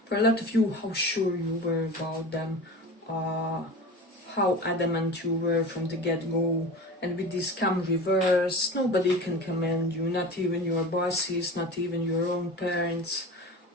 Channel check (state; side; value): normal; both; correlation 0.33